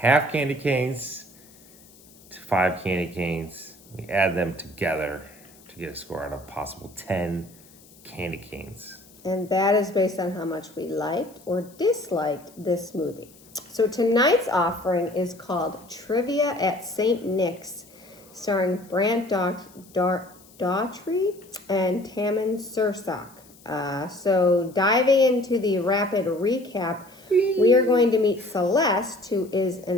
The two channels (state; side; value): noise; left; hiss, 25 dB below the sound